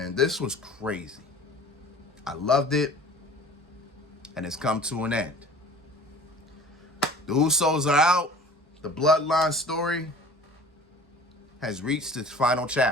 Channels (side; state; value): both; normal; correlation 0.45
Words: This was crazy. I loved it. And it's come to an end. The Usos are out. The Bloodline story has reached its final